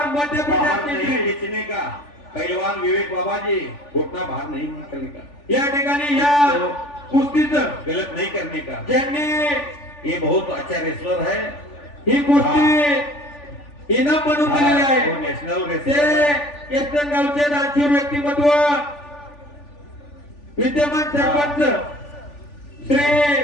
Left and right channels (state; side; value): late; right; 3.4 ms